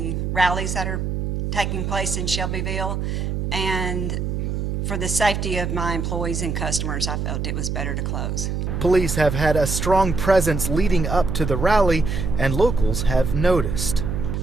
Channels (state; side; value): noise; right; hum, 2 dB below the sound